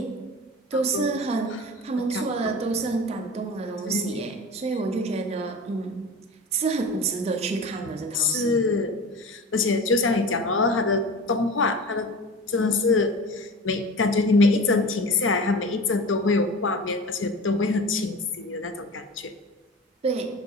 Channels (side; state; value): both; normal; correlation 0.34